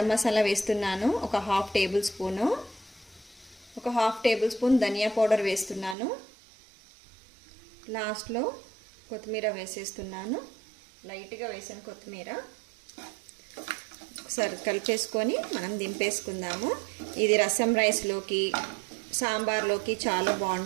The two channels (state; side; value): drops out; left; at 6.0 s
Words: మసాలా వేస్తున్నాను, ఒక ½ టేబుల్ స్పూను. ఒక ½ టేబుల్ స్పూన్ ధనియా పౌడర్ వేస్తున్నాను. లాస్ట్లో కొత్తిమీర వేసేస్తున్నాను, లైట్గా వేసాను కొత్తిమీర. ఒకసారి కలిపేసుకొని మనం దింపేసుకుందాము. ఇది రసం రైస్లోకి, సాంబార్లోకి చాలా